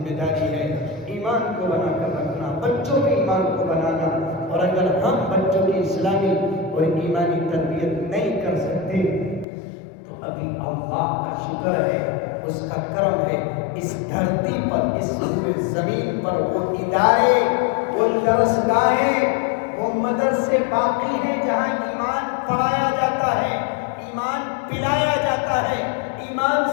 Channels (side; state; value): right; drops out; at 9.5 s